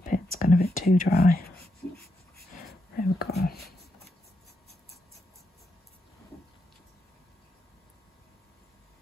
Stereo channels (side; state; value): both; normal; correlation 0.82